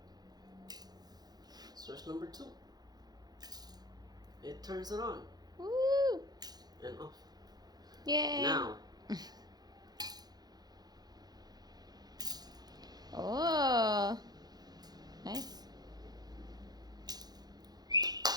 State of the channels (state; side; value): late; left; 0.19 ms